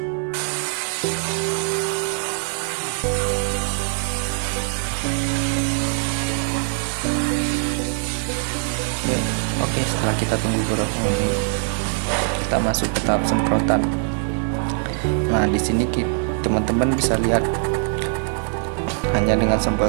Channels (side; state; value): left; silent; 64 dB below the other